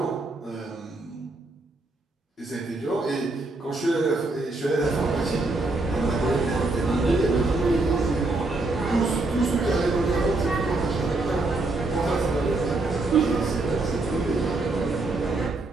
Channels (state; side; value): quieter; left; 3.1 dB